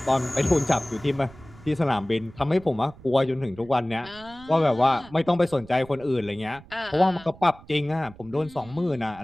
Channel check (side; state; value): right; noise; rumble, 21 dB below the sound